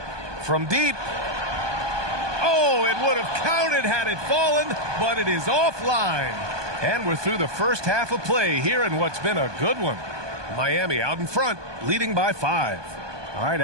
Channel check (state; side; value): late; left; 1.2 ms